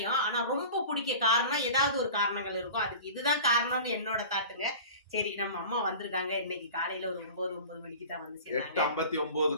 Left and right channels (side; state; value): both; inverted; correlation -0.38